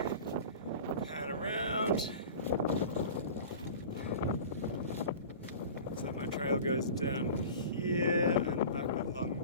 pan around. So my trail goes down here and back along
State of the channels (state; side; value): inverted; both; correlation -0.37